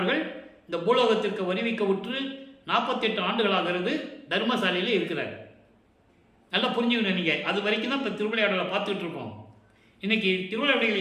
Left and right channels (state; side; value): identical; both; correlation 1.00